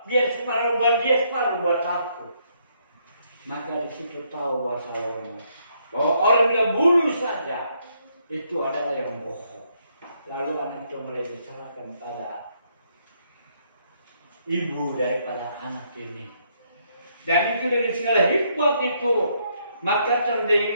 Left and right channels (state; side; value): inverted; both; correlation -0.73